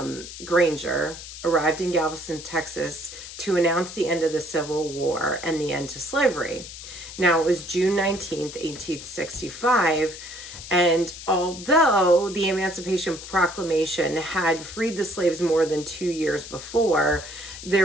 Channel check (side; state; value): left; noise; hiss, 12 dB below the sound